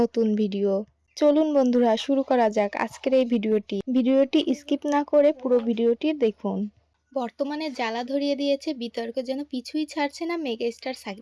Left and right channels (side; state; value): both; identical; correlation 1.00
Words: নতুন ভিডিও। চলুন বন্ধুরা, শুরু করা যাক আজকের এই ভিডিওটি স্কিপ না করে পুরো ভিডিওটি দেখুন। বর্তমানে জ্বালা ধরিয়ে দিয়েছে বিতর্ক, যেন পিছুই ছাড়ছে না মেগাস্টার